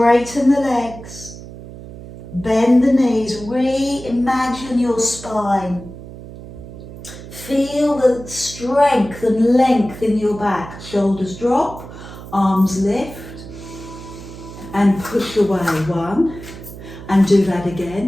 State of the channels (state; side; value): noise; right; hum, 14 dB below the sound